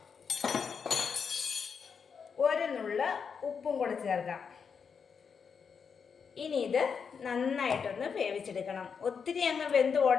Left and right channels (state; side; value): quieter; right; 6.2 dB